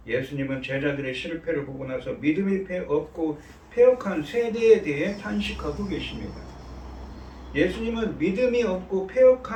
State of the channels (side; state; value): both; identical; correlation 1.00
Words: 예수님은 제자들의 실패를 보고 나서 믿음이 없고 패역한 세대에 대해 탄식하고 계십니다. 예수님은 믿음이 없고